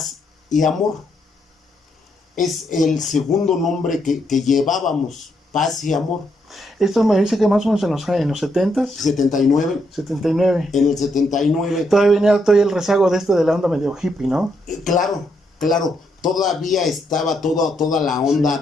y Amor. Es el segundo nombre que llevábamos, Paz y Amor. Esto me dice que más o menos en los 70s, 79, 79. en el 79. Todavía venía el rezago de la onda medio hippie, ¿no? Claro, todavía estaba toda la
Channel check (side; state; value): both; normal; correlation 0.77